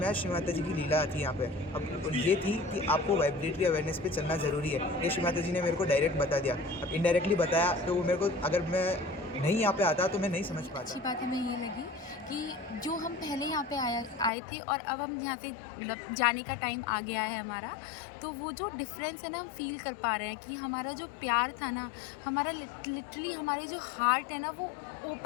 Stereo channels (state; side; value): drops out; right; at 14.3 s